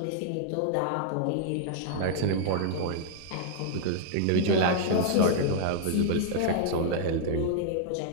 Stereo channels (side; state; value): both; different; correlation -0.01